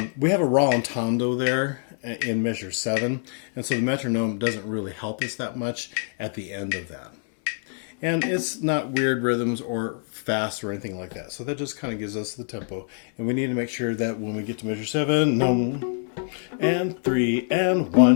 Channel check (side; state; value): right; silent; 61 dB below the other